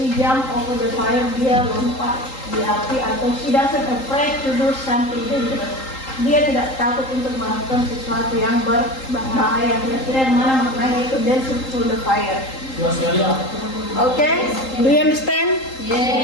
jump over the fire, dia lompat di api, atau she doesn't afraid to do something dangerous, dia tidak takut untuk melakukan sesuatu yang berbahaya. Kira-kira yang mana maknanya itu dancing through the fire? Okay, do you understand?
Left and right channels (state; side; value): late; right; 3.8 ms